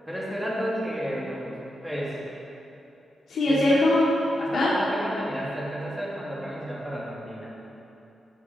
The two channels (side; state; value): both; normal; correlation 0.85